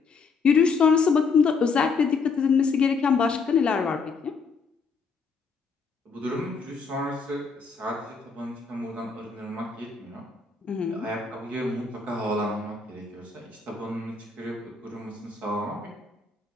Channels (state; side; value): quieter; right; 4.8 dB